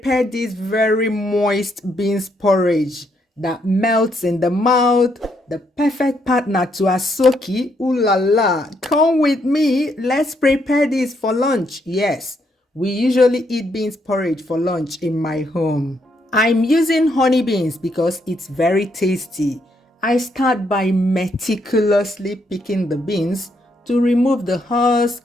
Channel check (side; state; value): both; normal; correlation 0.75